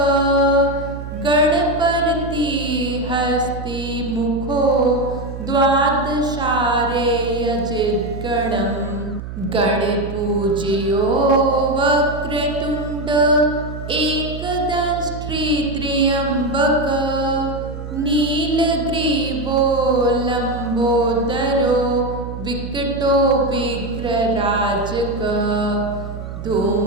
Ganapati हस्तिमुखो द्वादशारेयजिद्गणम् गणपूज्यो Vakratunda एकदंष्ट्री त्र्यम्बक नीलग्रीवो लम्बोदरो विकटो विघ्नराजक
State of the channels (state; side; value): noise; right; hum, 9 dB below the sound